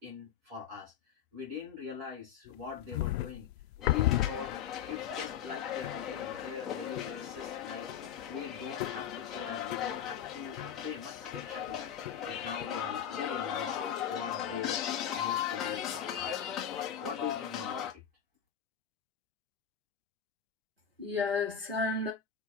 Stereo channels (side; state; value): right; quieter; 8.5 dB